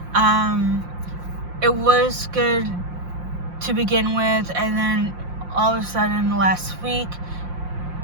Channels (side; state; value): left; late; 5.7 ms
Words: It was good to begin with, and then all of a sudden last week,